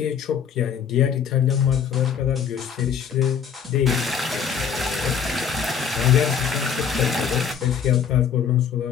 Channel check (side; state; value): right; quieter; 7.4 dB